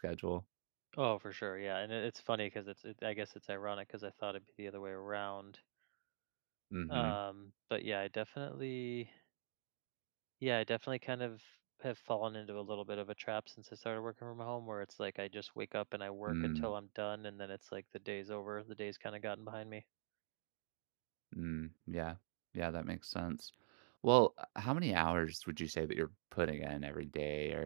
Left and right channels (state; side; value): silent; left; digital silence